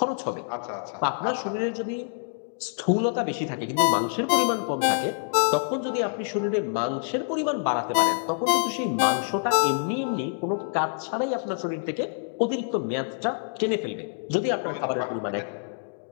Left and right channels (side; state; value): right; silent; digital silence